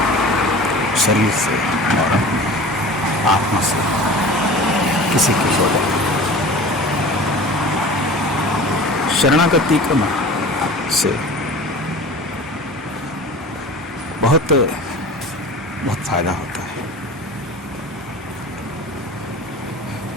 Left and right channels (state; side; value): normal; both; correlation 0.38